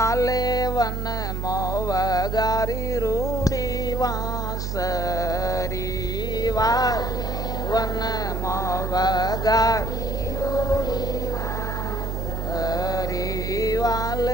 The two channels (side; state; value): right; noise; hum, 2 dB below the sound